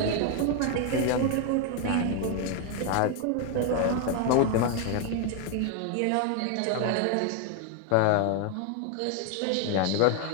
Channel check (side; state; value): both; different; correlation 0.01